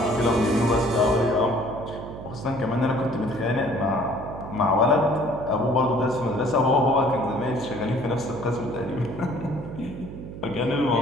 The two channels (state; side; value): noise; right; hum, 11 dB below the sound